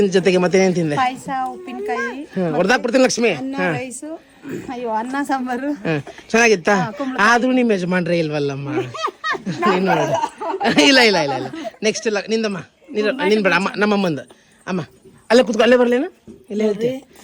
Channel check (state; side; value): identical; both; correlation 1.00